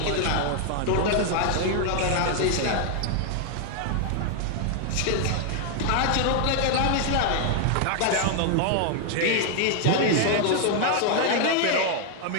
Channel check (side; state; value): both; different; correlation 0.00